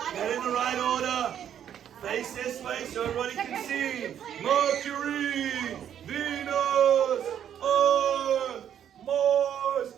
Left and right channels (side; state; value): left; quieter; 9.6 dB